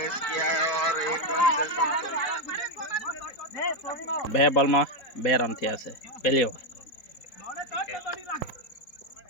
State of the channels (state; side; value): late; right; 4.2 ms